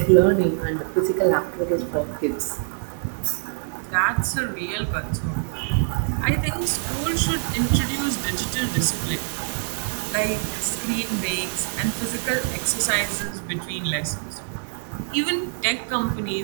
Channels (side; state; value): left; silent; digital silence